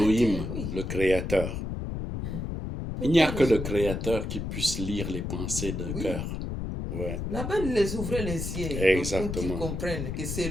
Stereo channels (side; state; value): left; noise; rumble, 4 dB below the sound